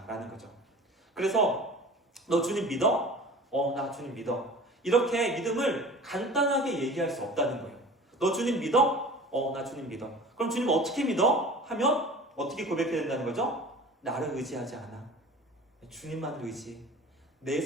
거죠. 그래서 너 주님 믿어? 나 주님 믿어. 이렇게 믿음을 간단하게 얘기할 수 없다는 거예요. 너 주님 믿어? 나 주님 믿어. 그럼 주님 어떻게 믿어? 하면 어떻게 고백해야 된다는 거죠? 나를 의지하지 않아. 주님만을 의지. 내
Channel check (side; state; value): both; normal; correlation 0.41